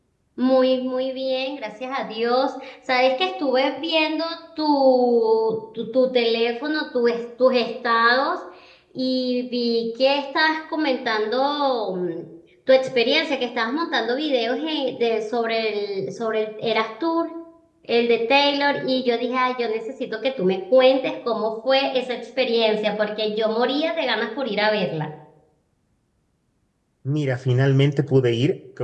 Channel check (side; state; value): both; identical; correlation 1.00